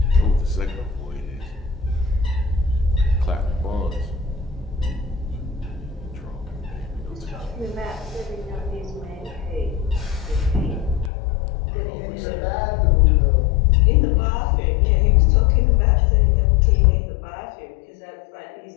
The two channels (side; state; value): right; drops out; at 11.1 s